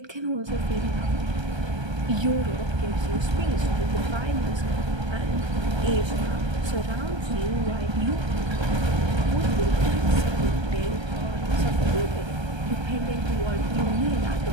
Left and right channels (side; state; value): left; late; 1.3 ms